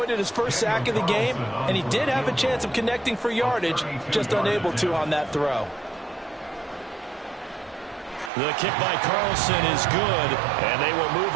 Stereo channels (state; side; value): drops out; left; at 8.3 s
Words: his first sack of the game, and he did have a chance of connecting for yardage, just unable to on that throw. The kick by Carlson is good, and they will move